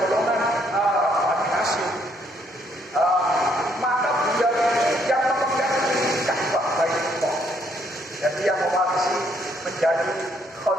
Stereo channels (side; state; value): both; normal; correlation 0.70